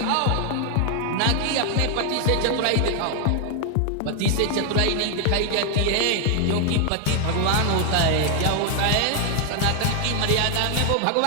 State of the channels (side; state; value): both; different; correlation 0.00